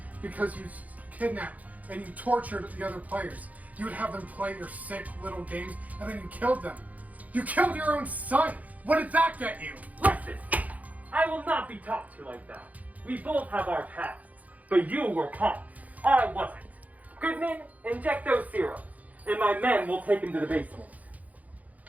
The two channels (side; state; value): left; late; 0.075 ms